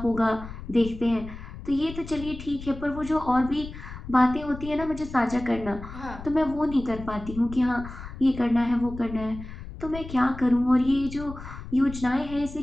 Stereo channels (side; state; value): left; noise; rumble, 12 dB below the sound